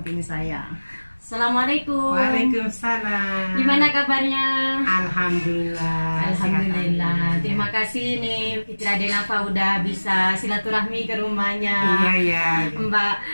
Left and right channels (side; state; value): both; inverted; correlation -1.00